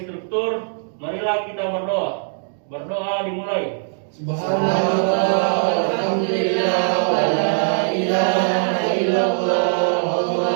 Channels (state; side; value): silent; left; digital silence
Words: struktur, marilah kita berdoa. Berdoa dimulai. Subhanallah, alhamdulillah, wa la ilaha illallah,